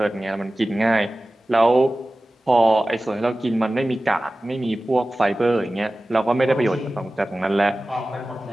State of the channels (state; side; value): normal; both; correlation 0.96